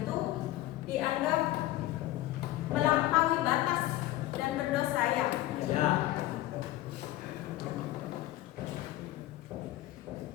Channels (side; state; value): right; quieter; 16.0 dB